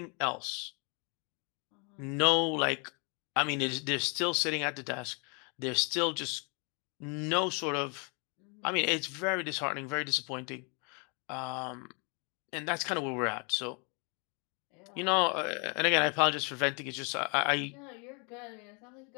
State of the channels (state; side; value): quieter; right; 34.8 dB